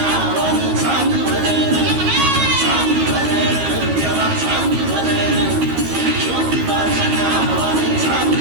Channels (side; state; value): left; late; 13 ms